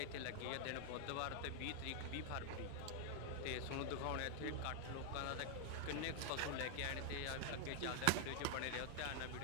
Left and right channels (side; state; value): both; different; correlation 0.00